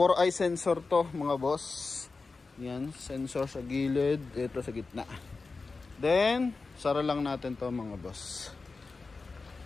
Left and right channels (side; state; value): right; quieter; 4.1 dB